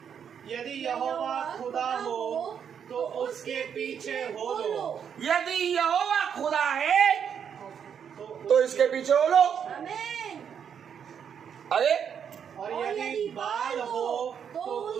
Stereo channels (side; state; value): left; quieter; 7.8 dB